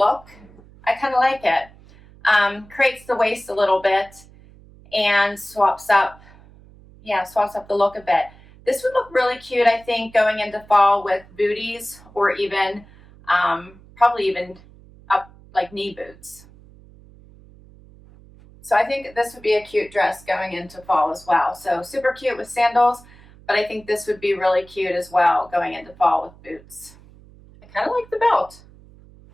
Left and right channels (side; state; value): right; noise; hum, 24 dB below the sound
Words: I kind of like it. Creates the waist a little bit and swaps up the look a bit. This would look really cute, I think, going into fall with booties or even, probably even up like knee boots. So I think this would be a cute dress going into fall as well. So super cute with sandals, but I think this would be really cute as well going into fall with boots. I kind of like the belt.